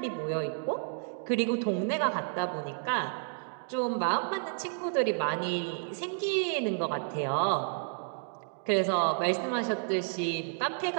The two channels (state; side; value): silent; left; digital silence